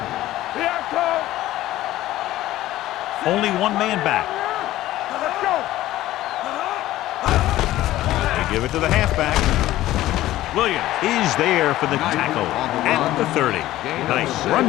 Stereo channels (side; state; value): right; quieter; 15.2 dB